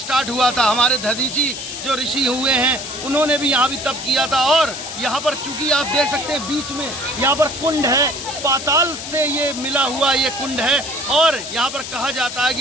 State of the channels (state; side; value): noise; left; hiss, 8 dB below the sound